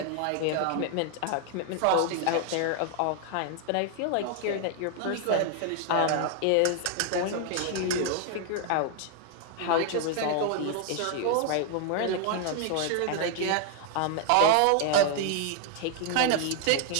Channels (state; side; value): different; both; correlation 0.00